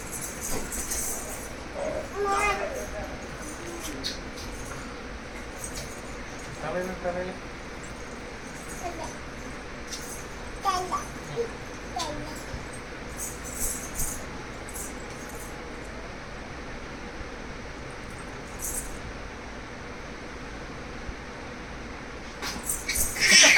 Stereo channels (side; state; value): both; identical; correlation 1.00